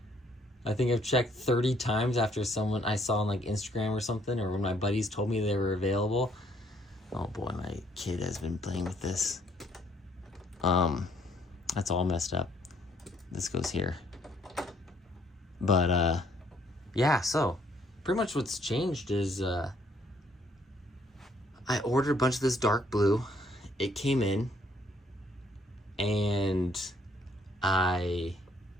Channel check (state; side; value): normal; both; correlation 0.66